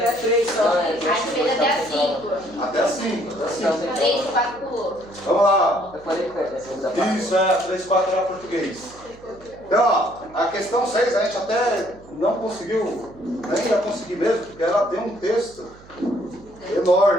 a 3 só. A gente fez até a 5. Até a 5. 3, 4 pulou. Vamos lá. Eu falei que foi essa da parte. Isso, 3, 4 era português. Então, ó, a questão 6 a gente até não conseguiu, nem ia conseguir mesmo, porque ela tem um texto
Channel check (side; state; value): right; noise; hum, 23 dB below the sound